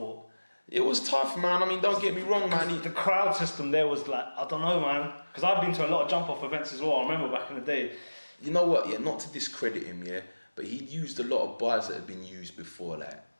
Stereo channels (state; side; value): inverted; both; correlation -1.00